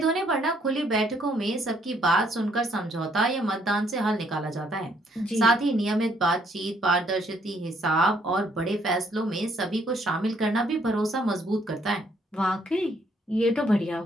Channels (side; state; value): both; normal; correlation 0.68